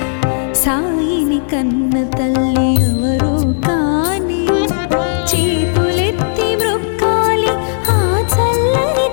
సాయిని కన్న తల్లి ఎవరో కాని చేతులెత్తి మ్రొక్కాలి ఆ చల్లని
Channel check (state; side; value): silent; right; 70 dB below the other